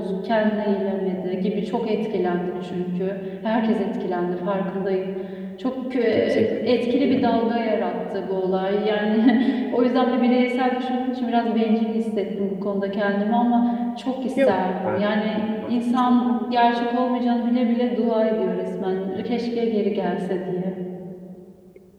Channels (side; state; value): both; identical; correlation 1.00